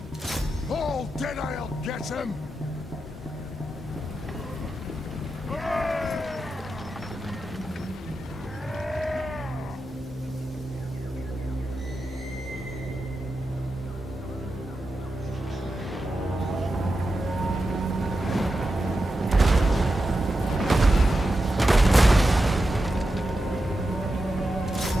All dead, I'll get him!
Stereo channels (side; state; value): both; normal; correlation 0.89